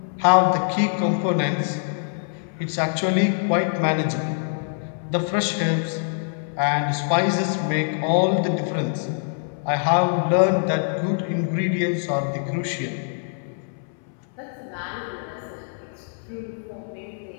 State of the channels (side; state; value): right; silent; 61 dB below the other